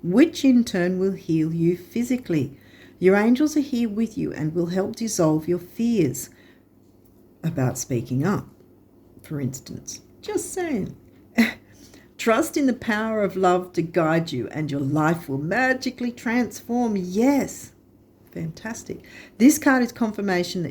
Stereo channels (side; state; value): both; identical; correlation 1.00